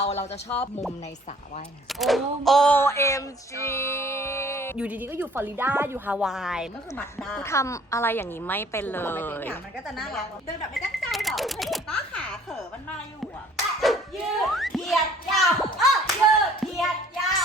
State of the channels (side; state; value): both; normal; correlation 0.55